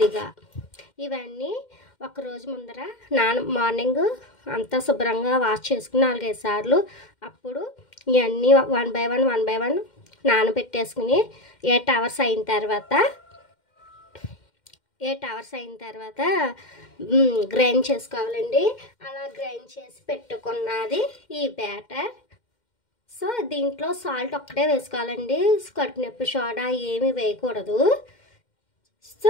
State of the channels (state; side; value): late; right; 2.1 ms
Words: ఇవన్నీ ఒకరోజు ముందర మార్నింగ్ అంతా శుభ్రంగా వాష్ చేసుకుని 4-5 సార్లు, అప్పుడు ఇవన్నీ 1 బై 1 నానబెట్టేసుకుని 8 అవర్స్ అయిన తర్వాత గ్రైండ్ చేసుకోవాలండి. అలా గ్రైండ్ చేసి పెట్టుకున్నది ఈ బ్యాటర్. సో దీంట్లో సాల్ట్ ఒక్కటే వేసుకోవాలండి, కడుపు నొప్పి సోడా ఏమీ వేయకూడదు.